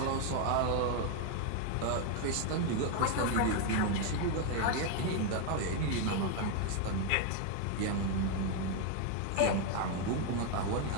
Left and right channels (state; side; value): different; both; correlation 0.01